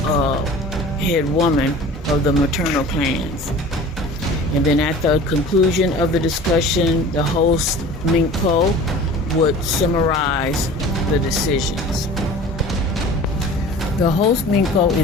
head woman of the maternal clans. And then at the conclusion of the discussion, the host Minko would summarize the decisions. The host Minko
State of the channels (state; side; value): normal; both; correlation 0.42